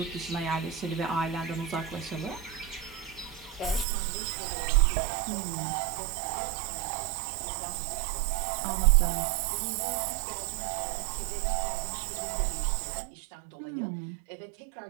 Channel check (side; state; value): left; drops out; at 3.9 s